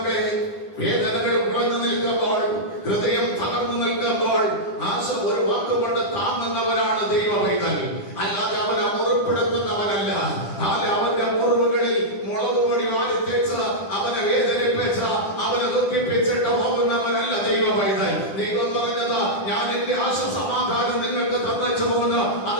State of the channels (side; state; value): right; late; 10 ms